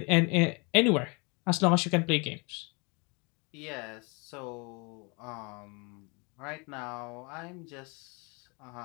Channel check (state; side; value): quieter; right; 31.2 dB